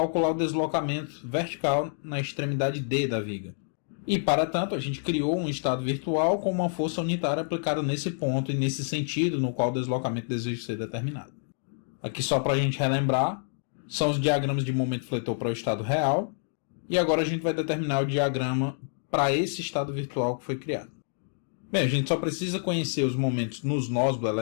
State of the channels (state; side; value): silent; right; digital silence